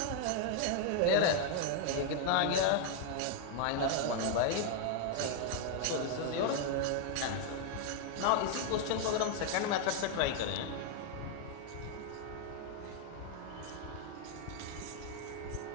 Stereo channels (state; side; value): different; both; correlation 0.00